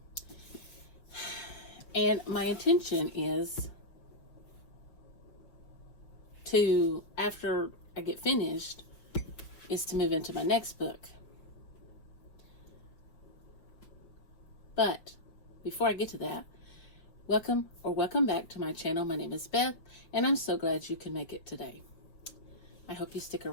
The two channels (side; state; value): right; late; 6.1 ms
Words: And my intention is to, after I get finished, is to move into my next book. But before I get to that, welcome back to my channel. My name is Beth, and I'm so glad you can make it today. I hope you stick